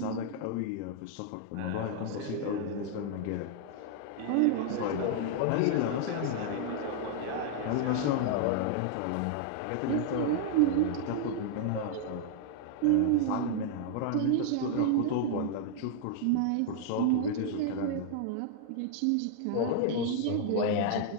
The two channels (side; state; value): both; different; correlation -0.01